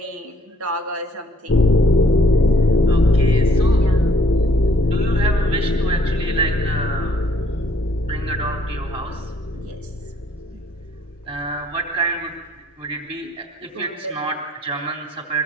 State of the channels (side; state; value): both; normal; correlation 0.64